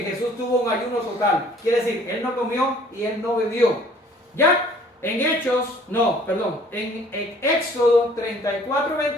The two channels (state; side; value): normal; both; correlation 0.55